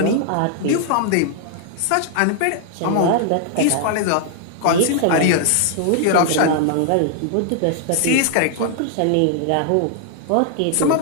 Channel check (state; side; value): different; both; correlation 0.00